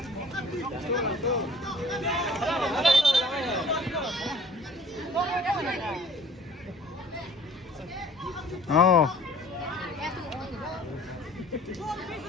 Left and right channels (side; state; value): both; normal; correlation 0.51